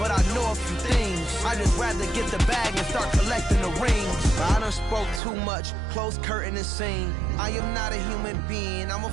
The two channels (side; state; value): left; drops out; at 5.2 s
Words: I know a few things. I just rather get the bag and start collecting the rings. I done spoke too much, close curtain and scene. I am not a human being, I'm a